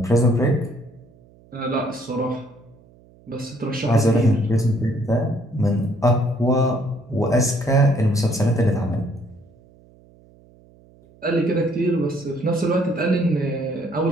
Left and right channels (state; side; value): noise; right; hum, 28 dB below the sound